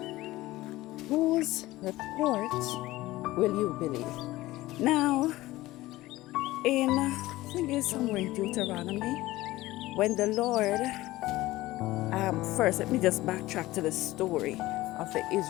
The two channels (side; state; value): right; quieter; 17.8 dB